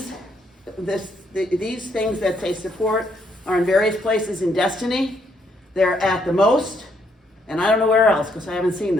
things that say support are in various places in Destiny. They're at the Most, and I don't know where else because I haven't seen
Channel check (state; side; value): normal; both; correlation 0.73